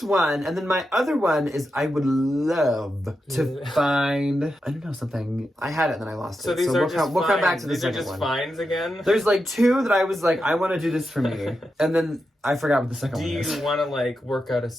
one. And then my other one is I would love to find, I don't know, something. I had it and then I lost it. So these are we'll come back to the second one. These are just finds again? There's like 2 that I was like, I want to do this for me. And then I forgot what the second one is. Do you want to like work out a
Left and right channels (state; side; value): normal; both; correlation 0.88